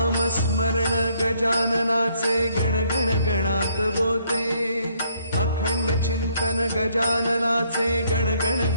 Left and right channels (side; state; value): both; inverted; correlation -0.68